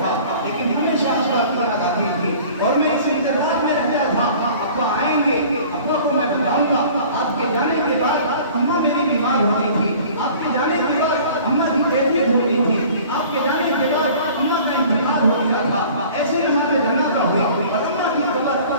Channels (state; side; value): inverted; both; correlation -0.47